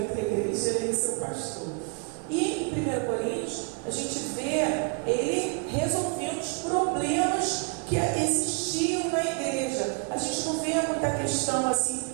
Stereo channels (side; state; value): left; quieter; 36.3 dB